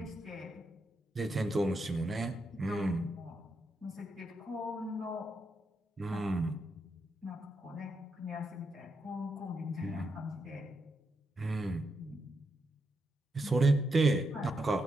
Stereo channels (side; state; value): both; normal; correlation 0.83